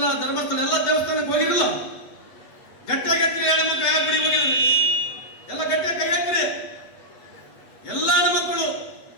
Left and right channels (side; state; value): right; late; 7.9 ms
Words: ಧರ್ಮಸ್ಥಳ ಎಲ್ಲ ದೇವಸ್ಥಾನಕ್ಕೆ ಹೋಗಿರಲಿಲ್ಲ. ಗಟ್ಟಿಯಾಗೆತ್ರಿ ಹೆಣ್ಮಕ್ಳು. ಯಾವ ಗುಡಿ ಹೋಗಿದ್ರಿ? ಎಲ್ಲ ಗಟ್ಟಿಯಾಗಿ ಕೈ ಎತ್ತಿರಿ. ಎಲ್ಲ ಹೆಣ್ಮಕ್ಳು